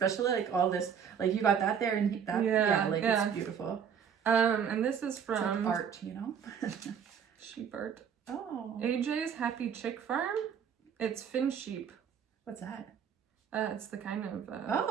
like all this, like you got that there and that, it's beautiful. And this is from it's like art, you know. Sheep art. Oh. AJ's Happy Chick Farm. It's Finnsheep. What's that? It's the kind of.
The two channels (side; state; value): left; quieter; 7.6 dB